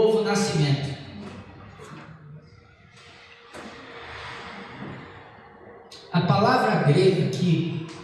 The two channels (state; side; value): identical; both; correlation 1.00